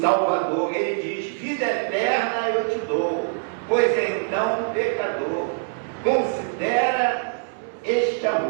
Ele diz: vida eterna eu te dou, pois então, pecador, considera este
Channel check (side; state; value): left; silent; 63 dB below the other